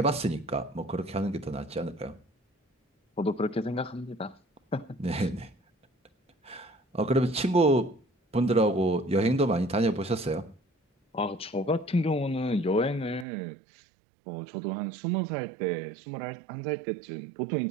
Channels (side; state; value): left; drops out; at 13.2 s